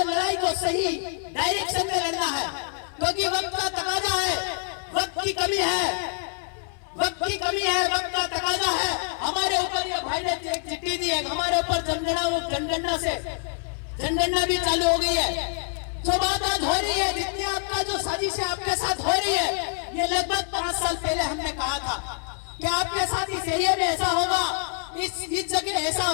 लड़ाई को सही डायरेक्शन में लड़ना है, क्योंकि वक्त का तकाजा है, वक्त की कमी है, वक्त की कमी है, वक्त का तकाजा है। हमारे ऊपर ये भाई ने एक चिट्ठी दी है, हमारे ऊपर जनगणना भी चालू हो गई है। जो बात आज हो रही है, जितनी आपका जो साजिश आपके साथ हो रही है, ये लगभग 5 साल पहले हमने कहा था कि आपके साथ इस एरिया में ऐसा होगा, इस जगह ऐसा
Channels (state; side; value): silent; right; 56 dB below the other